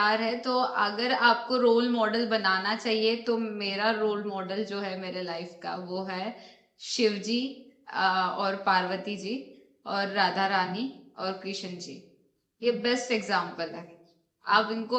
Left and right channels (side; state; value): both; identical; correlation 1.00